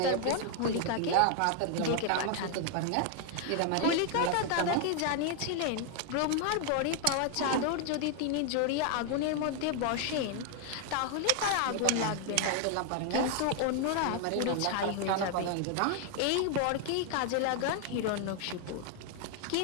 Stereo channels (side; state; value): both; different; correlation 0.00